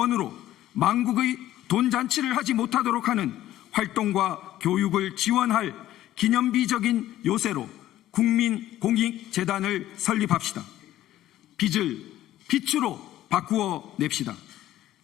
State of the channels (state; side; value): quieter; right; 13.7 dB